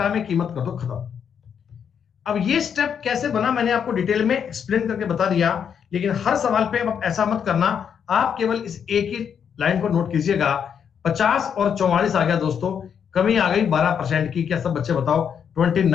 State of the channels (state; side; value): quieter; right; 7.7 dB